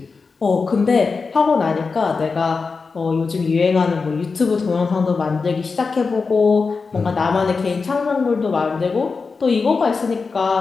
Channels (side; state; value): right; quieter; 4.6 dB